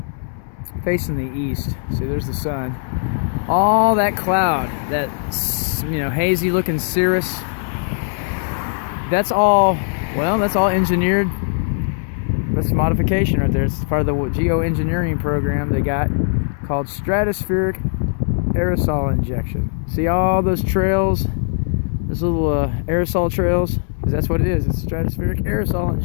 Facing the east. See, there's the sun. All that cloud, that, you know, hazy looking cirrus, that's all, well, that's all engineered. That's modification right there. It's part of the Geo Engineering program they got called Stratospheric Aerosol Injection. See all those trails, those little aerosol trails? Because that's what it is. It's stratospheric aerosol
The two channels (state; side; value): silent; right; 66 dB below the other